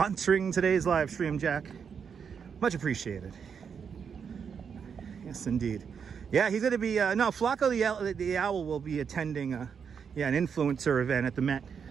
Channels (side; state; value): left; quieter; 6.7 dB